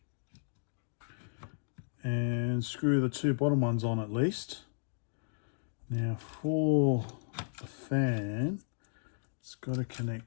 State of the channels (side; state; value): right; silent; digital silence